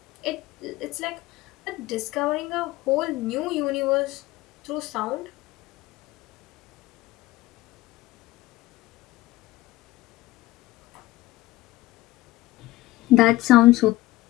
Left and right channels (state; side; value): quieter; right; 17.5 dB